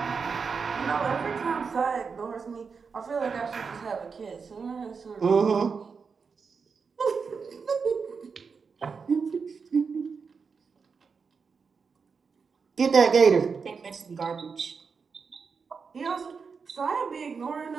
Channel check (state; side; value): quieter; left; 5.4 dB